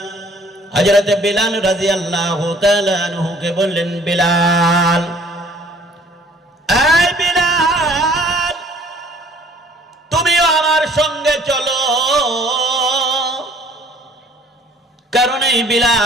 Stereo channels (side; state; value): both; normal; correlation 0.56